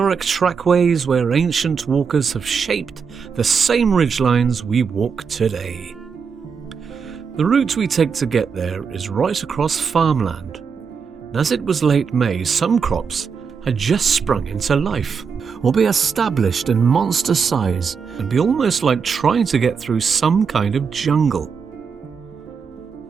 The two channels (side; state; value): left; quieter; 6.0 dB